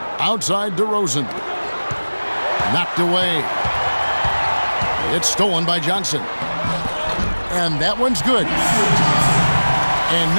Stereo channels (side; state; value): both; inverted; correlation -1.00